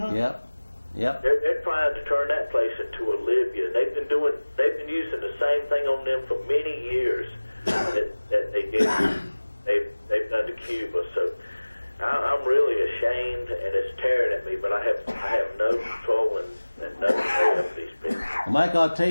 Yep. They're trying to turn that place into a Libya. They've been using the same thing on them for many years that they've done to Cuba. So I'm really ashamed, and it's tearing at me. But I have no control and no control over these people. Well, Mike, I'll tell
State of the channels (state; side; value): inverted; both; correlation -1.00